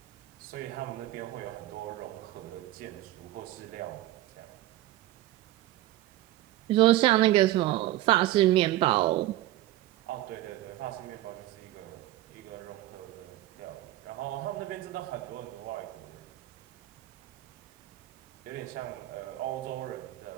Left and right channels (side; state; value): left; quieter; 15.4 dB